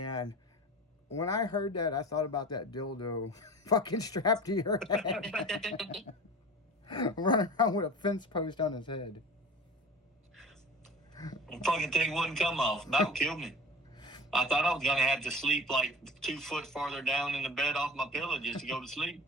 when I heard that, I thought about that dildo fucking strapped to your head. Running around with a fence post on his head. The fucking thing wouldn't come off. That would kill me. I thought I was going to have to sleep like 2 foot farther down in the bed off my pillow just to go to sleep.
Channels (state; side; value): normal; both; correlation 0.37